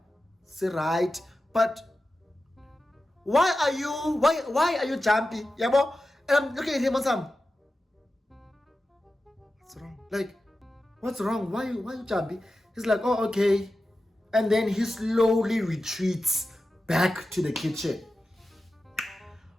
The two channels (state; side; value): normal; both; correlation 0.93